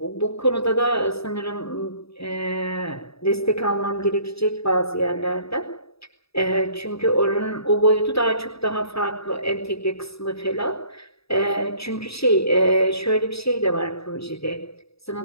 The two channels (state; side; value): late; right; 0.77 ms